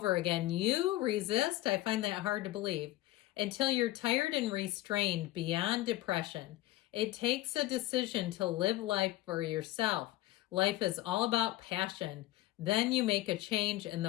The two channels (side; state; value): right; quieter; 16.8 dB